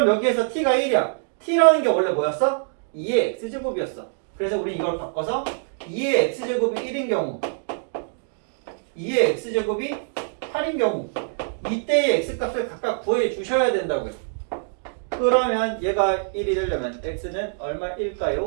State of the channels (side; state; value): left; silent; digital silence